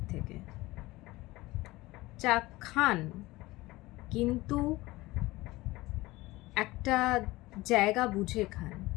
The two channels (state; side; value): quieter; right; 19.7 dB